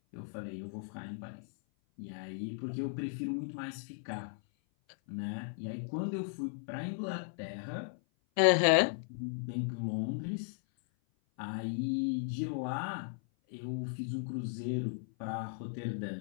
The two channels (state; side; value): silent; right; 54 dB below the other